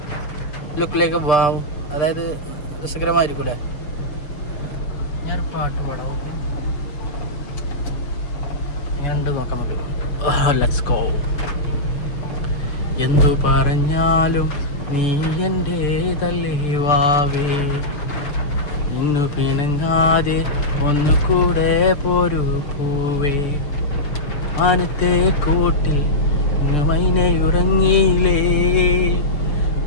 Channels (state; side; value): late; right; 6.8 ms